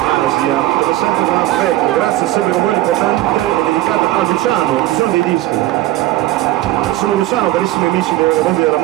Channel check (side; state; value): left; quieter; 15.6 dB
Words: Asia, come sempre con affetto, grazie sempre con voi l'importante è dedicata a Luciano, ci sono dei dischi. Sono Luciano, carissimi amici dei mondi della